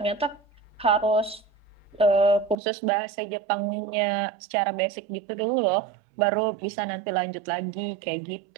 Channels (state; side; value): drops out; left; at 2.6 s